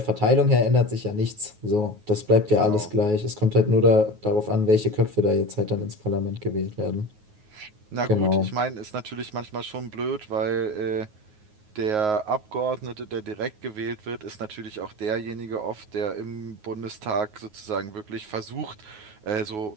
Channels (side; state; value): left; late; 9.4 ms